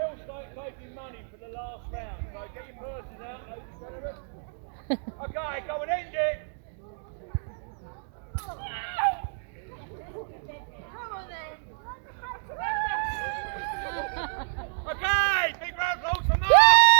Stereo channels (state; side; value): silent; left; 59 dB below the other